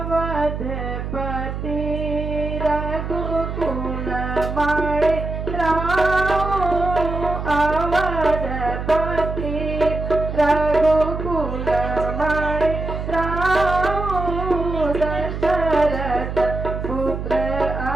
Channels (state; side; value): noise; right; hum, 5 dB below the sound